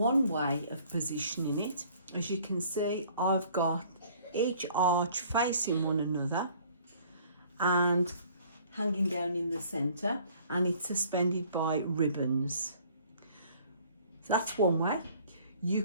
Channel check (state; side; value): inverted; both; correlation -0.55